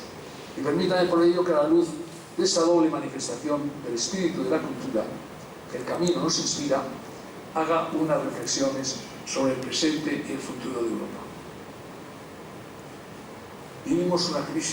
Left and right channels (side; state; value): both; identical; correlation 1.00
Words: Y permítame por ello que a la luz de esta doble manifestación del espíritu de la cultura, que el camino nos inspira, haga unas reflexiones sobre el presente y el futuro de Europa. Vivimos